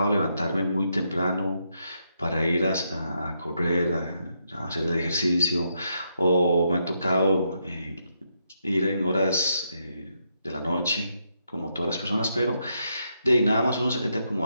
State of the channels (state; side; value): inverted; both; correlation -0.79